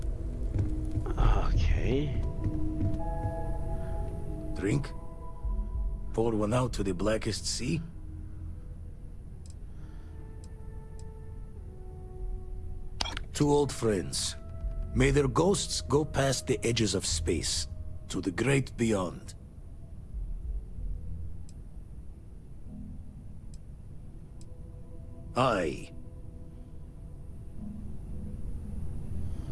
Okay. Drink? Pour one out to the blackest sea? Two old friends. May their ghosts go past the edges of space, to the great beyond. Aye.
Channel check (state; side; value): identical; both; correlation 1.00